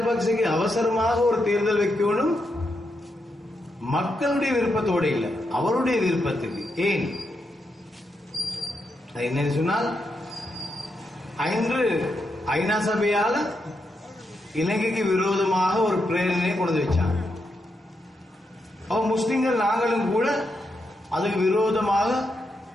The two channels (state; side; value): normal; both; correlation 0.83